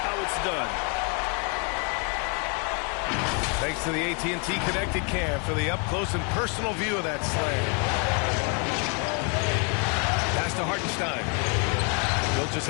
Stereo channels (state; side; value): quieter; right; 36.0 dB